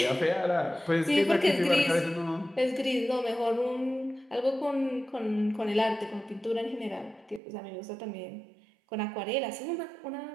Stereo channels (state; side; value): drops out; left; at 7.4 s